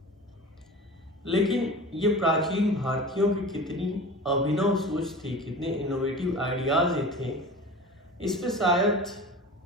लेकिन ये प्राचीन भारतीयों की कितनी अभिनव सोच थी, कितने इनोवेटिव आइडियाज ये थे, इस पे शायद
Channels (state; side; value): normal; both; correlation 0.36